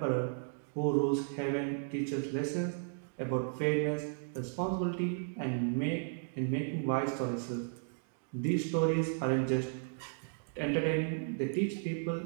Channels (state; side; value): silent; left; digital silence